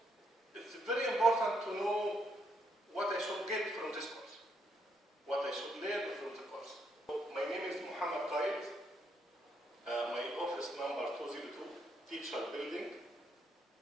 it's very important to know what I should get from this course, what I should learn from the course. My name is Muhammad Qaid. My office number 202, Teacher Building.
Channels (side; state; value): both; normal; correlation 0.76